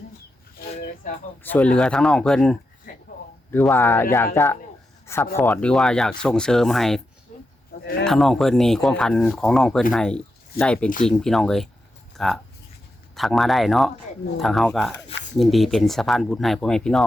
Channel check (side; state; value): both; normal; correlation 0.87